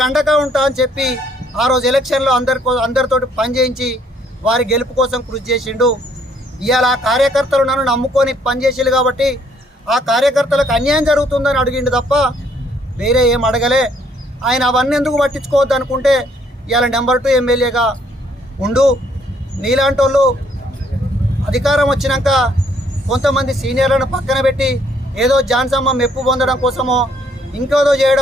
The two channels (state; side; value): normal; both; correlation 0.66